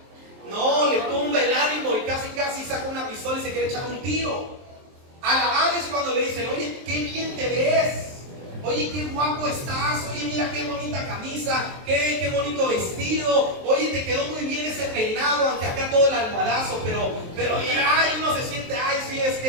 No, le tumba el ánimo y casi saca una pistola y se quiere echar un tiro. Alabar es cuando le dicen: oye, qué bien te ves. Oye, qué guapo estás. Oye, mira qué bonita camisa. Qué bonito vestido. Oye, te quedó muy bien ese peinado, aunque acá todo el almohadazo. Pero ay, uno se siente: ay, sí, es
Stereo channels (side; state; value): left; late; 23 ms